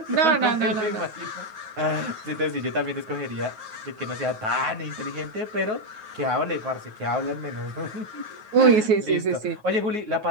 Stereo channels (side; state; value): left; late; 9.3 ms